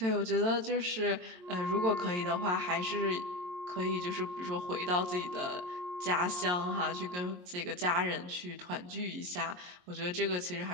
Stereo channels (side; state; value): left; late; 22 ms